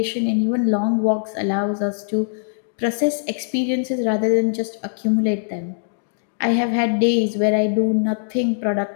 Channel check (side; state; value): right; silent; digital silence